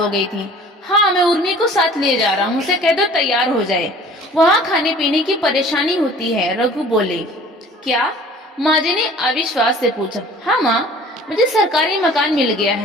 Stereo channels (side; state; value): both; normal; correlation 0.48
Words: गई थी। हाँ, मैं उर्मी को साथ ले जा रहा हूँ, उसे कह दो तैयार हो जाए, वहाँ खाने पीने की परेशानी होती है, रघु बोले। क्या? माँ जी ने अविश्वास से पूछा। हाँ माँ, मुझे सरकारी मकान मिल गया